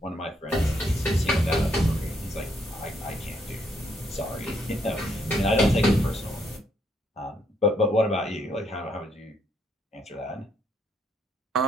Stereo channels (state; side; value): normal; both; correlation 0.73